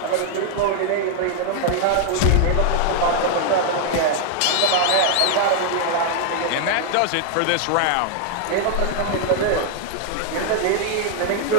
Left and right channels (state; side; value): different; both; correlation 0.00